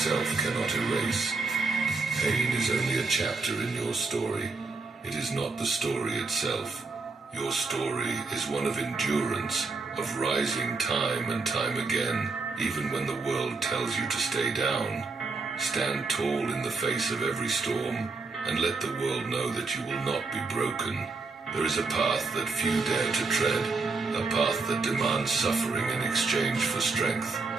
cannot erase. Pain is only a chapter in your story. It is not the story itself. Your story is one of endurance, of rising time and time again, Even when the world tells you to stay down, stand tall in the face of every storm and let the world know that you will not be broken. There is a path that few dare to tread, a path that demands suffering in exchange for strength.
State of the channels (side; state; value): left; quieter; 3.9 dB